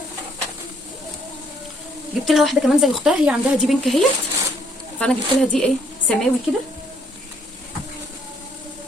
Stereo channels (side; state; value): both; normal; correlation 0.68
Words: جبت لها واحده كمان زي اختها، هي عندها دي بينك اهيت، فانا جبت لها دي ايه سماوي كده.